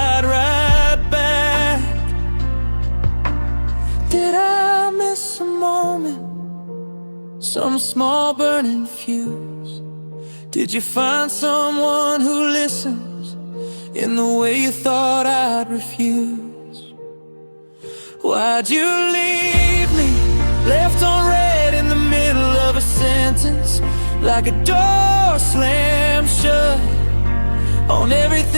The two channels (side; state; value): both; inverted; correlation -1.00